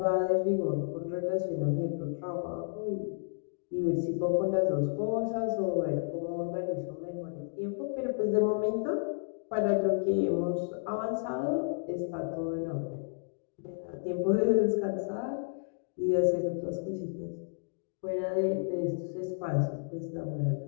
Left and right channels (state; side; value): silent; right; digital silence